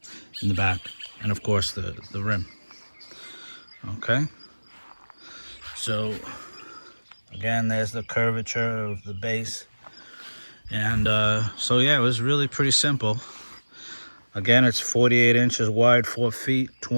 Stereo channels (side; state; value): both; inverted; correlation -1.00